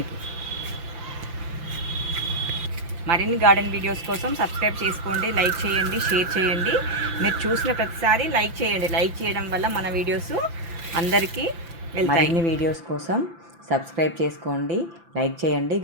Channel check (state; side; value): late; left; 5.9 ms